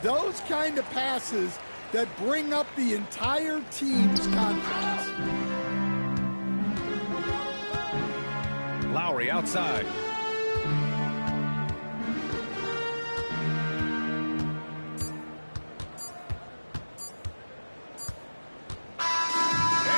kind of passes that bring up the entire team's confidence. Lowry outside.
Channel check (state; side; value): inverted; both; correlation -1.00